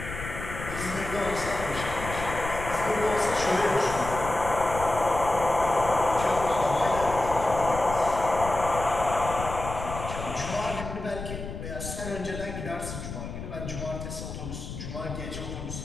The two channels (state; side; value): noise; left; rumble, 8 dB below the sound